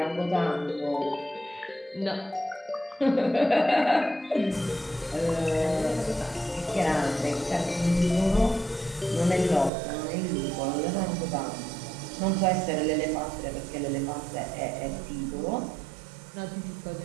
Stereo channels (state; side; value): drops out; left; at 9.7 s